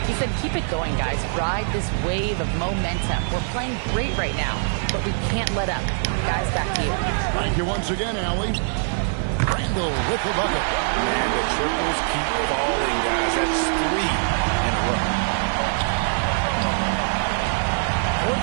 He said, keep it going, guys. Ride this wave of momentum. We're playing great right now, but we can't let up. Guys, back to you. Thank you once again, Allie. Randall with the bucket. And the triples keep falling, guys. That's 3 in a row. For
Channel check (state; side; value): silent; left; digital silence